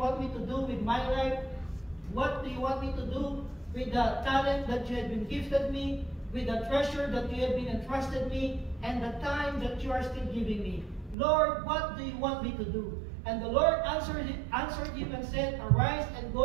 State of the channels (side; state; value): left; drops out; at 11.2 s